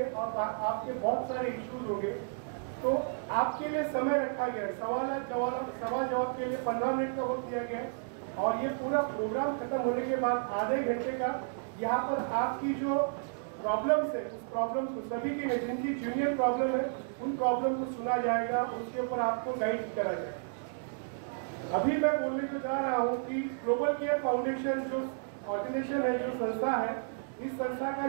और आपके बहुत सारे इश्यूज होंगे। तो आपके लिए समय रखा गया है, सवाल जवाब के लिए 15 मिनट का वक्त दिया गया है और ये पूरा प्रोग्राम खत्म होने के बाद आधे घंटे का यहाँ पर आपकी जो प्रॉब्लम्स है उस प्रॉब्लम को सभी की नहीं, जिनकी जूनियर प्रॉब्लम है उन प्रॉब्लम को सुना जाएगा, उसके ऊपर आपको गाइड करा जाएगा। अभी मैं बोलने को जा रहा हूँ कि ग्लोबल केयर फाउंडेशन जो ऑर्गेनाइजेशन है, जो संस्था है, इस संस्था का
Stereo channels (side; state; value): left; silent; digital silence